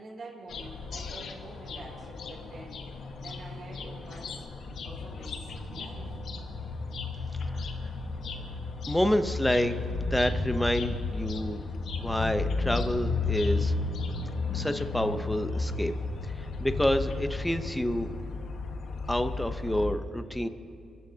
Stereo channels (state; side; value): normal; both; correlation 0.89